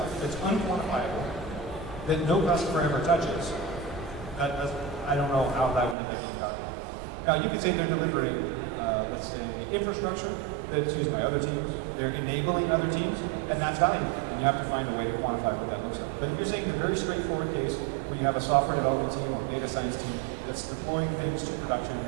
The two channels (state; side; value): drops out; left; at 6.0 s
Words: that's unquantifiable, that no customer ever touches, I don't know how that would end up being valuable. Now you could say they're delivering, let's say, infrastructure that's used by other teams, they're enabling other teams, and that's valuable. And you have to find a way to quantify what that looks like. But if you're saying the very straightforward case where you have a software development team or data science team that's deploying things to production